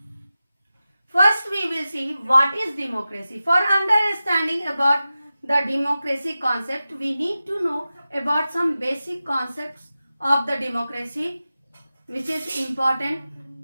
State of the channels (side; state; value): both; inverted; correlation -0.94